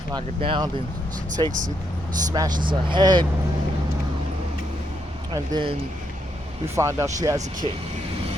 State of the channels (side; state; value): both; normal; correlation 0.78